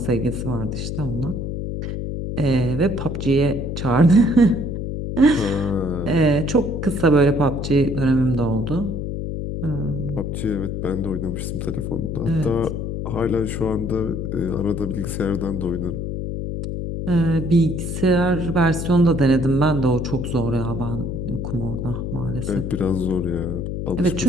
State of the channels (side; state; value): left; noise; hum, 4 dB below the sound